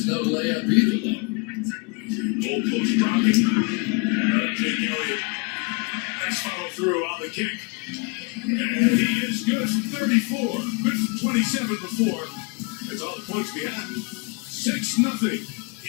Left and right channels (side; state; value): right; quieter; 31.1 dB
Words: no layup either, though. Goalpost dropping. Jake Elliott. Nice follow through on the kick. And he is good from 34. Good from 27 before. That's all the points we have. 6-0.